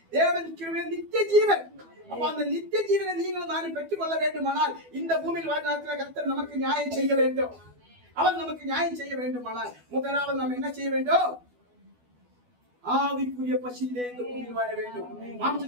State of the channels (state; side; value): late; left; 12 ms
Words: தேவன் கிருபை நித்திய ஜீவன். அப்ப அந்த நித்திய ஜீவனை நீங்களும் நானும் பெற்றுக் கொள்ள வேண்டுமானால் இந்த பூமியில் வாழ்நாட்டில் கர்த்தர் நமக்கு நியாயம் செய்ய வேண்டும். அவர் நமக்கு நியாயம் செய்ய வேண்டுமானால் முதலாவது நாம் என்ன செய்ய வேண்டும்? ஆவிக்குரிய பசியிலே இந்த பூமியில் வாழ வேண்டும்.